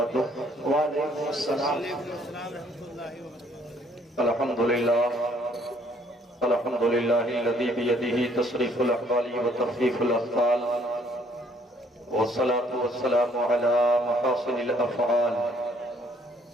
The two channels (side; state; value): both; normal; correlation 0.63